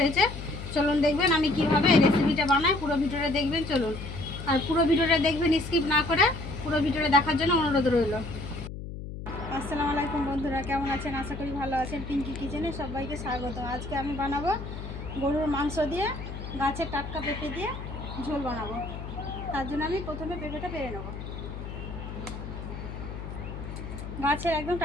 হয়েছে। চলুন দেখবেন আমি কিভাবে এই রেসিপিটা বানাই। পুরো ভিডিওটা দেখবেন চলুন। আর পুরো ভিডিওটা দেখবেন, স্কিপ না করে পুরো ভিডিওটা দেখার জন্য অনুরোধ রইল। আসসালামু আলাইকুম বন্ধুরা, কেমন আছেন? আশা করি ভালো আছেন। পিঙ্কি কিচেনে সবাইকে স্বাগত। আজকে আমি বানাবো গরুর মাংস দিয়ে গাছের টাটকা পেঁপে দিয়ে ঝোল বানাবো। তার জন্য আমি প্রথমে পেঁপেটা পেরে নেব। গাছের একদম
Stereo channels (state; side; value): noise; left; hum, 9 dB below the sound